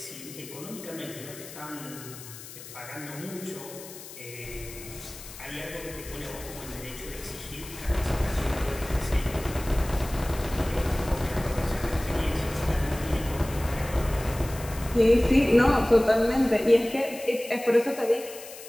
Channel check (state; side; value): noise; left; hiss, 14 dB below the sound